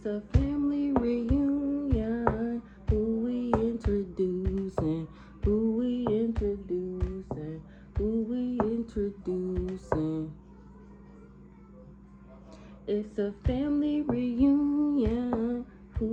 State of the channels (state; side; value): identical; both; correlation 1.00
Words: a family reunion. Who we introducing? Who we introducing? Who we introducing? It's a family reunion.